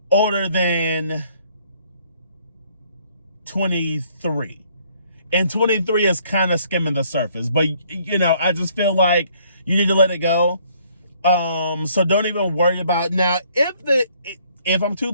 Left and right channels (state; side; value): inverted; both; correlation -0.64